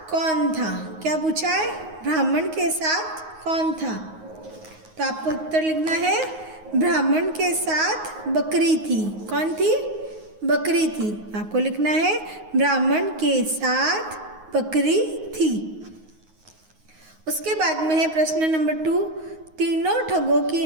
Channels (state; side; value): late; left; 9.5 ms